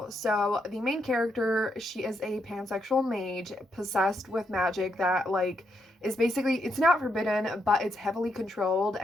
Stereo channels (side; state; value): both; normal; correlation 0.79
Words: So the main character, she is a pansexual mage possessed with magic that, like, is basically, it's not forbidden, but it's heavily controlled,